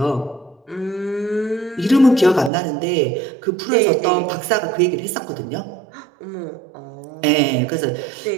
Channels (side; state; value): left; drops out; at 2.5 s